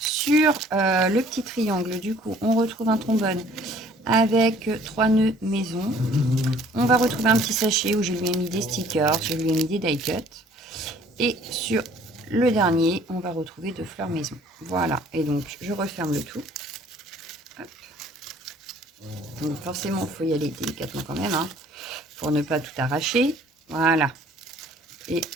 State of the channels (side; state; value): both; normal; correlation 0.56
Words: le petit triangle, du coup, on retrouve un trombone avec 3 nœuds maison. On va retrouver un petit sachet où je lui ai mis des stickers, je lui ai mis des die cuts. Et sur le dernier, on va retrouver 2 fleurs maison. Voilà, et donc je referme le tout. Hop. Donc forcément, il faut y aller délicatement quand même, hein, pour ne pas tout arracher. Voilà. Et